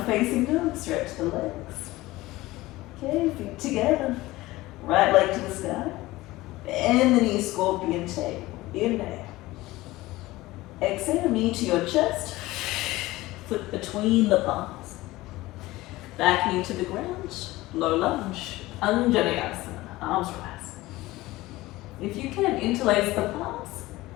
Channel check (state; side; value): quieter; right; 18.7 dB